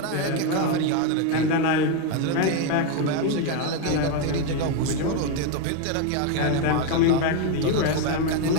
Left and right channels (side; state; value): both; different; correlation 0.02